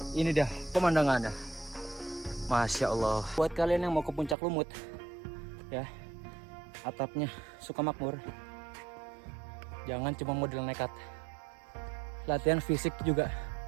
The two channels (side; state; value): left; drops out; at 4.4 s